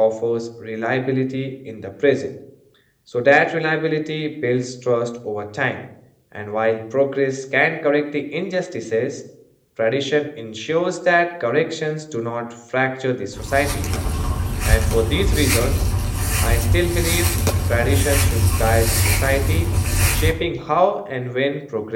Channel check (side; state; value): both; identical; correlation 1.00